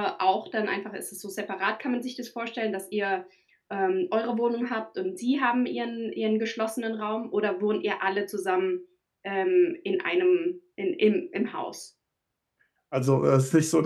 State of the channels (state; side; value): identical; both; correlation 1.00